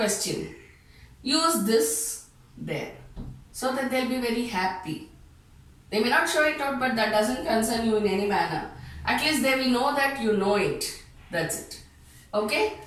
use this there so that they'll be very happy. They may not show it out, but that doesn't concern you in any manner. At least they will know that you know it. That's it. Okay?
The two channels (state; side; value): identical; both; correlation 1.00